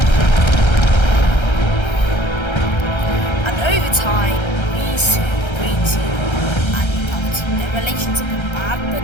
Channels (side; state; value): right; late; 1.3 ms